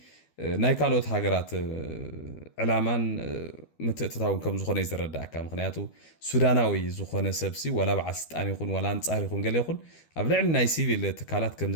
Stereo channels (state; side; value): late; right; 12 ms